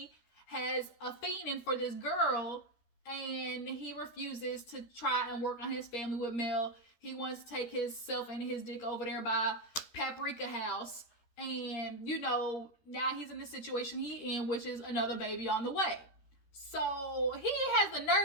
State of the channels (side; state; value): right; late; 13 ms